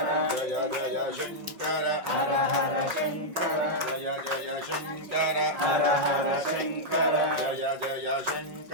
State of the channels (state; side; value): late; left; 5.5 ms